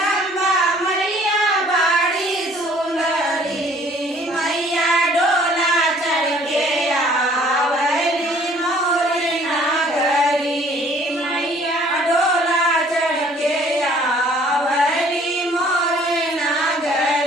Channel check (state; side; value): normal; both; correlation 0.57